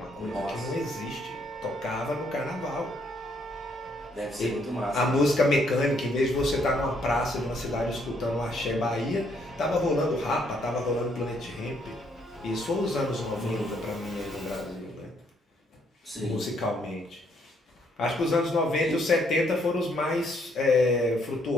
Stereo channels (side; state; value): both; normal; correlation 0.70